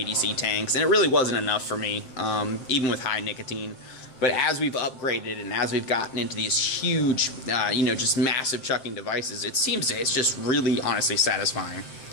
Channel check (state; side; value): late; right; 7.6 ms